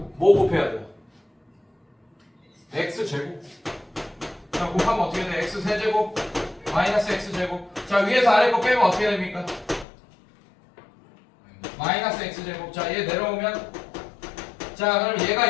곱해야 돼요? x제곱. 자, 곱하면 어떻게 돼? x3제곱 마이너스 x제곱. 자, 위에서 아래 거 빼면 어떻게 됩니까? 마이너스 x제곱. 자, 얘 내려오면 자, 그럼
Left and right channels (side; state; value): right; drops out; at 9.9 s